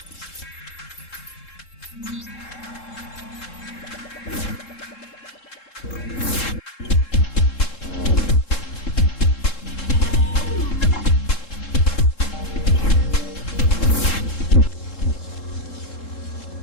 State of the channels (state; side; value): late; right; 3.7 ms